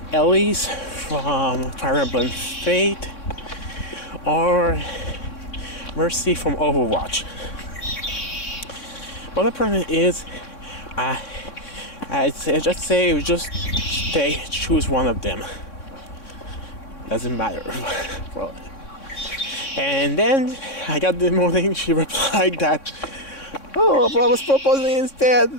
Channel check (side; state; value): right; late; 3.6 ms